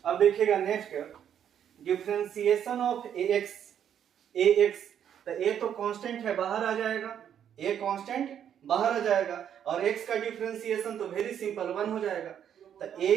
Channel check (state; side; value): quieter; left; 9.2 dB